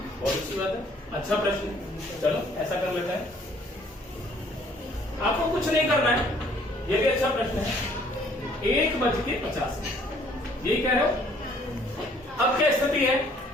बहुत अच्छी बात है, अच्छा प्रश्न। चलो ऐसा कर लेते हैं, आपको कुछ नहीं करना है, ये भी अच्छा प्रश्न है। 1:50 यही कह रहे हो। अब क्या स्थिति है,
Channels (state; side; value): normal; both; correlation 0.60